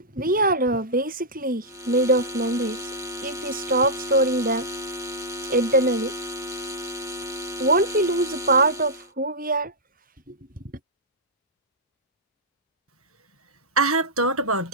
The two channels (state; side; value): normal; both; correlation -0.11